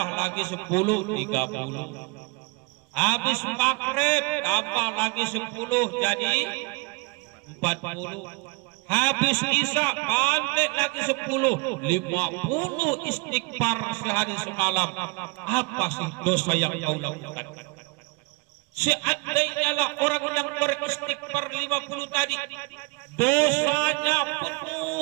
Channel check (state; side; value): quieter; left; 28.9 dB